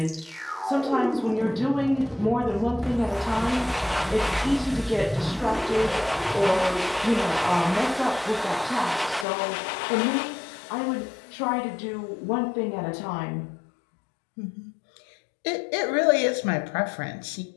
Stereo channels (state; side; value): drops out; right; at 9.2 s